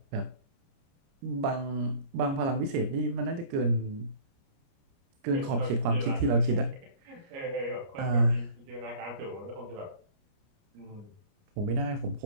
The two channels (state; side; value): late; left; 29 ms